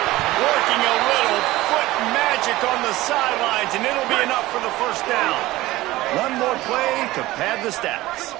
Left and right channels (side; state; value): left; quieter; 17.8 dB